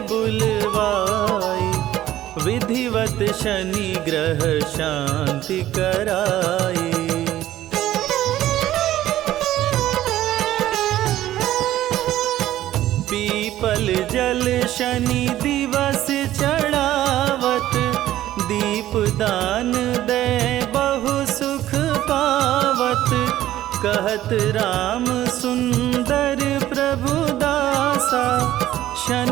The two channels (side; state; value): left; quieter; 13.7 dB